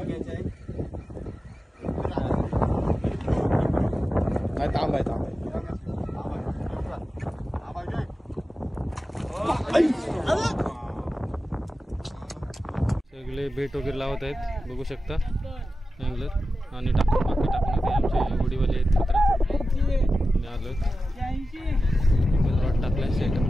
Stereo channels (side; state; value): both; normal; correlation 0.93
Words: तांब आहे, तांब आहे. सगळे बेट वगैरे लावत आहेत बघू शकता अँगलर. आणि बाकी टाकून आमचे होडीवाले आहेत मित्र आलो. रॉड टाकलाय, सेटअप